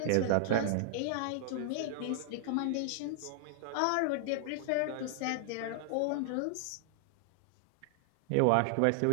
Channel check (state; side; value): different; both; correlation 0.00